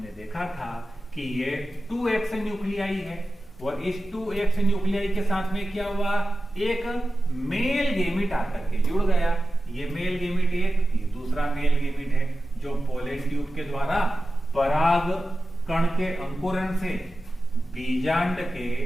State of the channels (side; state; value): both; normal; correlation 0.94